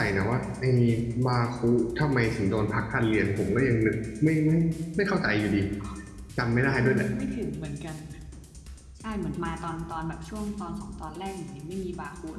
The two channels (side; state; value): both; identical; correlation 1.00